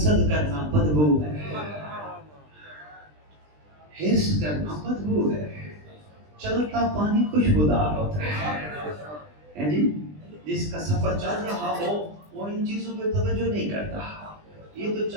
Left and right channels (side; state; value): left; late; 20 ms